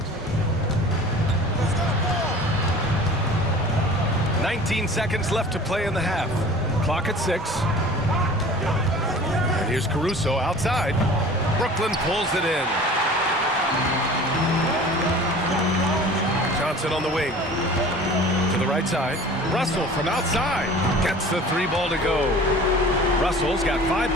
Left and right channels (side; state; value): both; normal; correlation 0.43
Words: 19 seconds left to play in the half. Clock at 6. And here's Caruso outside. Brooklyn pulls it in. Johnson on the wing. To the right side. Russell from outside. Gets the 3 ball to go. Russell's got 5